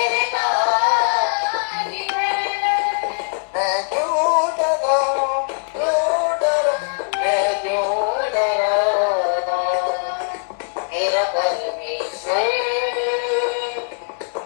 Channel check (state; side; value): silent; right; digital silence